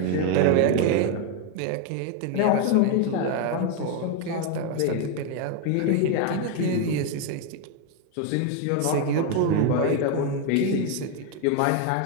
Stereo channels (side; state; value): both; different; correlation 0.01